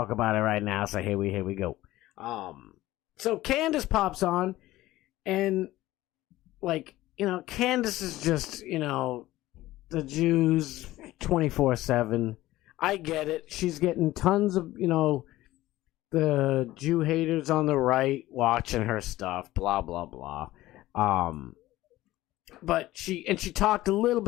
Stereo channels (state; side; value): quieter; right; 16.5 dB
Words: about it right now. So here we go. So Candace pops on, and Candace is just, the Jews 24/7. I get it. She's getting tons of, the Jew haters on the right watching her stuff, blah, blah, blah. But she talked a little